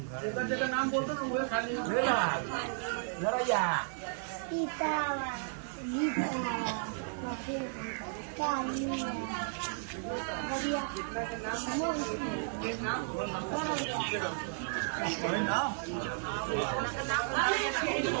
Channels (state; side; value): silent; left; digital silence